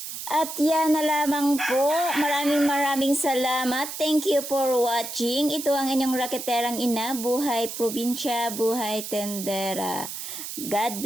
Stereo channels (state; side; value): noise; right; hiss, 8 dB below the sound